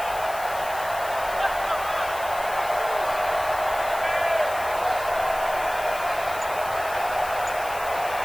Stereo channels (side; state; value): left; noise; hiss, 14 dB below the sound